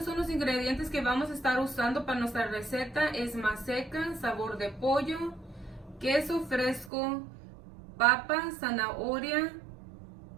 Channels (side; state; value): left; drops out; at 6.9 s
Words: son los ingredientes que vamos a estar usando para nuestra receta. Es maseca, sabor de pollo, queso fresco, papa, zanahoria,